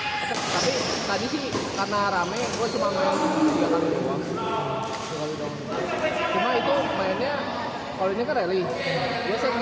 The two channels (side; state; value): both; identical; correlation 1.00